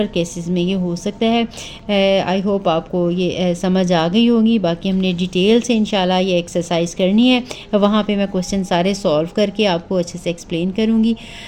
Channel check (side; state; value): both; identical; correlation 1.00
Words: केसेस में ये हो सकता है। आई होप आपको ये समझ आ गई होगी। बाकी हमने डिटेल से इंशाल्लाह ये एक्सरसाइज करनी है, वहाँ पे मैं क्वेश्चन सारे सॉल्व करके आपको अच्छे से एक्सप्लेन करूँगी।